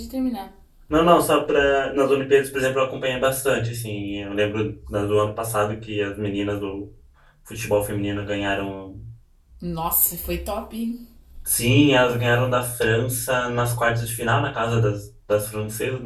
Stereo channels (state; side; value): identical; both; correlation 1.00